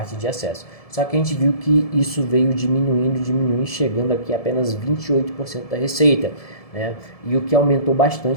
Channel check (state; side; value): late; right; 1.7 ms